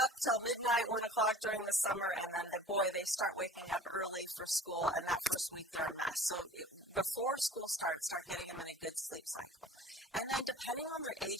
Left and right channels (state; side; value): normal; both; correlation 0.44